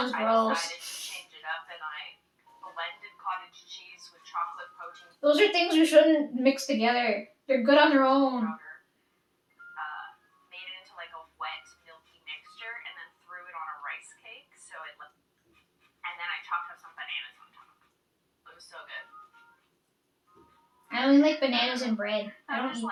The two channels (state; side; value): identical; both; correlation 1.00